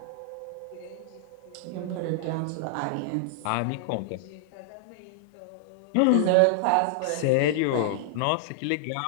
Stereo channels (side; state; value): both; different; correlation -0.01